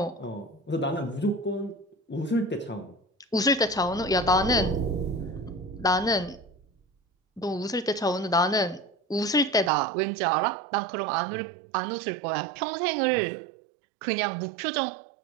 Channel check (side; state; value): left; drops out; at 9.7 s